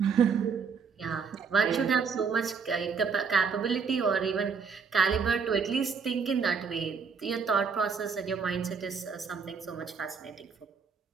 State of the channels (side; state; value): left; quieter; 5.8 dB